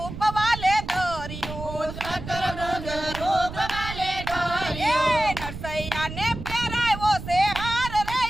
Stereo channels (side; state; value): right; noise; rumble, 10 dB below the sound